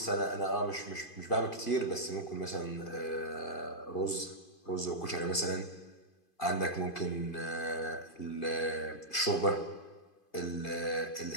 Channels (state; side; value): late; right; 2.5 ms